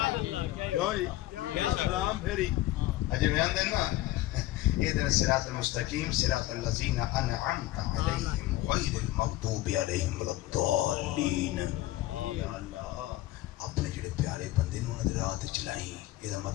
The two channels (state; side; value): quieter; right; 16.3 dB